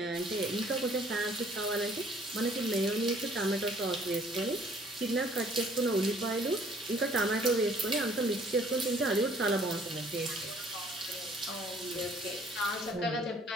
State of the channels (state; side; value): normal; both; correlation 0.59